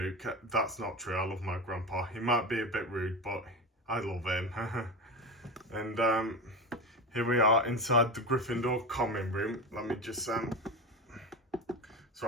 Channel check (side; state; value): both; normal; correlation 0.22